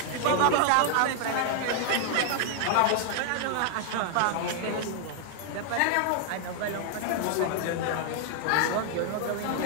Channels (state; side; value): different; both; correlation 0.00